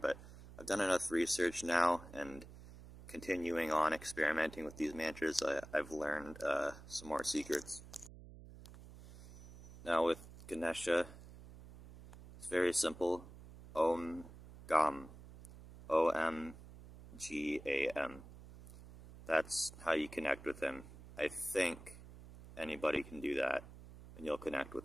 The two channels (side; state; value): right; noise; hum, 17 dB below the sound